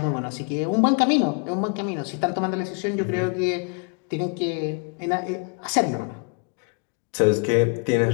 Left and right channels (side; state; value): right; quieter; 36.0 dB